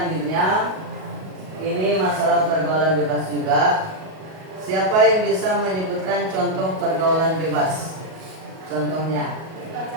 ini masalah pergaulan bebas juga. Siapa yang bisa menyebutkan contoh pergaulan bebas? Contohnya?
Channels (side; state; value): left; late; 38 ms